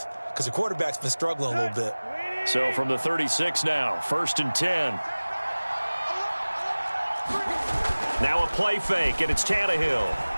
because the quarterback's been struggling a little bit. So from the 36 now, 1st and 10. Now a play fake, and it's Tannehill.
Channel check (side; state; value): both; inverted; correlation -1.00